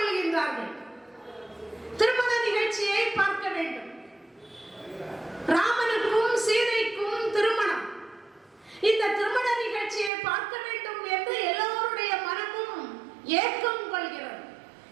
திருமண நிகழ்ச்சியை பார்க்க வேண்டும். ராமனுக்கும் சீதைக்கும் திருமணம். இந்த திருமண நிகழ்ச்சியை பார்க்க வேண்டும் என்று எல்லோருடைய மனமும் ஏக்கம் கொள்கிறது.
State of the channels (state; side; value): drops out; left; at 10.1 s